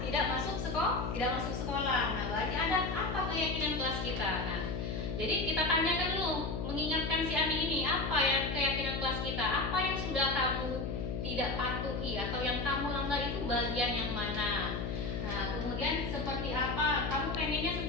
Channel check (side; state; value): left; noise; hum, 3 dB below the sound